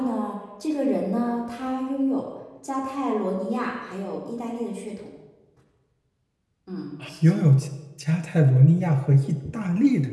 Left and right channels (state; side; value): identical; both; correlation 1.00